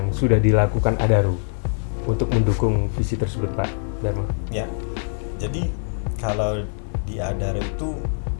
sudah dilakukan Adaro untuk mendukung visi tersebut Pak Dharma? Ya, jadi kalau di Adaro itu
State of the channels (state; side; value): silent; right; digital silence